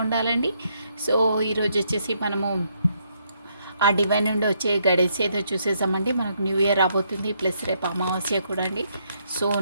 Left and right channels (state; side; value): inverted; both; correlation -0.74